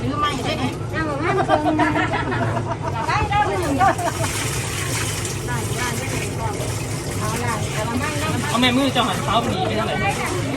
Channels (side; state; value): both; identical; correlation 1.00